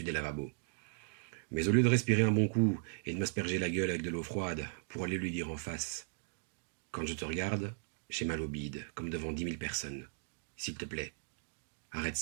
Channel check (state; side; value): silent; left; digital silence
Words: des lavabos. Mais au lieu de respirer un bon coup et de m'asperger la gueule avec de l'eau froide pour aller lui dire en face « Quand je te regarde, j'ai mal au bide, comme devant 10 000 personnes. S'il te plaît, arrête